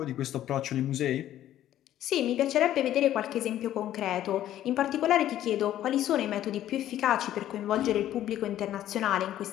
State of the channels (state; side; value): quieter; right; 12.4 dB